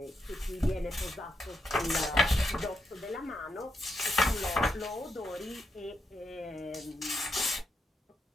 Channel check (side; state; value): both; normal; correlation 0.81